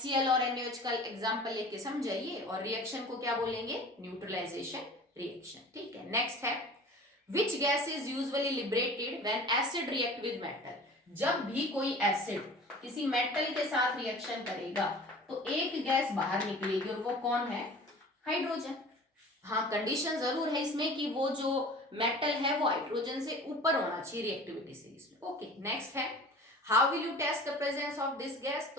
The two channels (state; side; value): normal; both; correlation 0.42